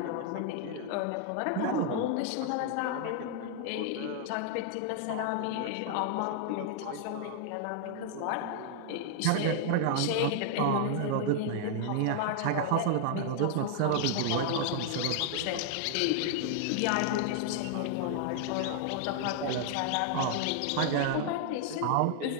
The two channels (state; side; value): different; both; correlation 0.00